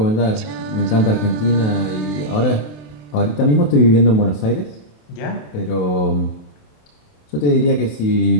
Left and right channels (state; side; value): late; right; 28 ms